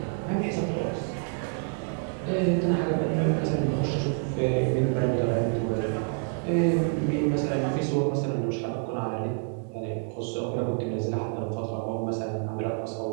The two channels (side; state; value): left; quieter; 38.6 dB